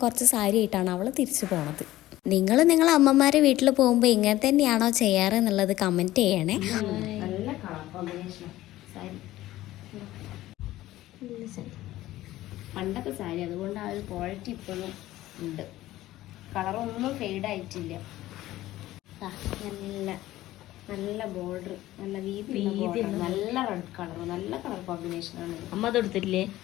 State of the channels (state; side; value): quieter; right; 15.7 dB